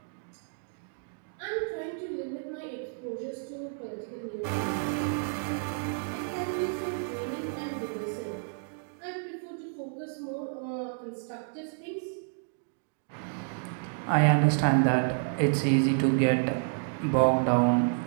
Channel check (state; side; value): silent; left; digital silence